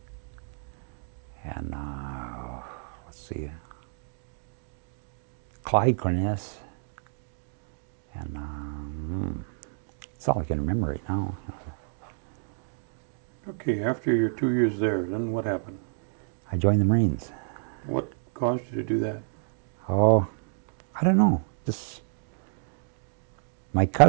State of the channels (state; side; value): silent; left; digital silence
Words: and let's see, Clyde Cornelius, and that's all I can remember right now. Okay, after your 2 years there, then what happened? I joined the Marines. What caused you to do that? Oh, I don't know. Just my